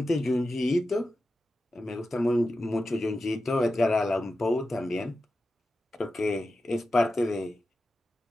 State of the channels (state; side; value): normal; both; correlation 0.92